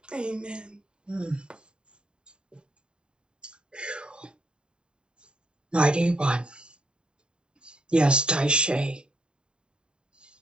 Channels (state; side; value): late; left; 0.050 ms